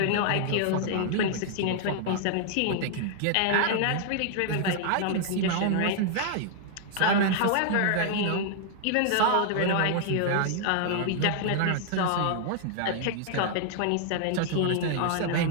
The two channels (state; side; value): different; both; correlation -0.01